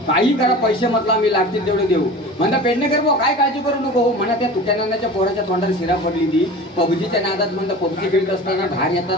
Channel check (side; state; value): both; normal; correlation 0.36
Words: काही करा, पैसे म्हटलं आम्ही लागतील तेवढे देऊ. म्हणता पेडणेकर भाऊ काय काळजी करू नको हो. म्हणा त्या तुट्यानाच्या पोराच्या तोंडात शिरा पडली ती पबजीच्या नादात. म्हणता पबजी खेळत असताना बाहेर